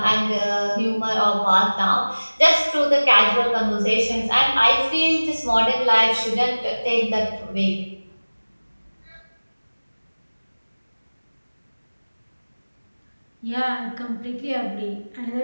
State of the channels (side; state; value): both; inverted; correlation -1.00